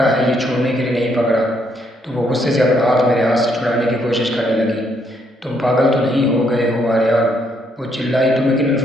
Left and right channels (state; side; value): normal; both; correlation 0.72